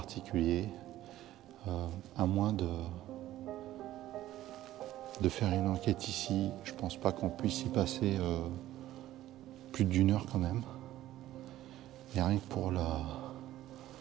À moins de faire une enquête ici, je pense pas qu'on puisse y passer plus d'1 heure quand même. Et rien que pour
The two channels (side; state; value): left; quieter; 14.2 dB